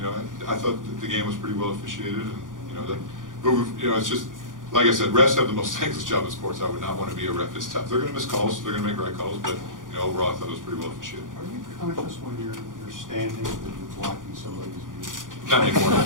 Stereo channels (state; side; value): late; left; 0.89 ms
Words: know, I thought that the game was pretty well officiated, and you know that. But you know, it's just like I said, refs have the most thankless job in sports. I would not want to be a ref. It's tough. They're going to miss calls. They're going to make right calls. But you know, overall, I thought it was pretty well officiated. Are you conscious when you're standing that you're blocking somebody's view? Not anymore.